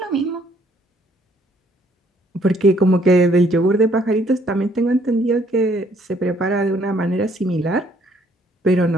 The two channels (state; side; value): normal; both; correlation 0.65